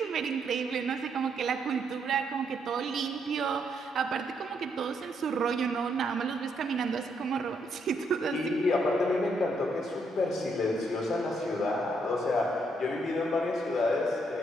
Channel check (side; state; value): both; normal; correlation 0.75